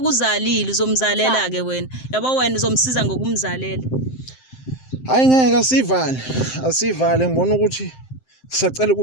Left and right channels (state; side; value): late; right; 7.7 ms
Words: uzalile uzomzalela ke wena yabo wena uzomsiza ngokumzalela hayi ngeke asivale ngibona ukuthi sisacela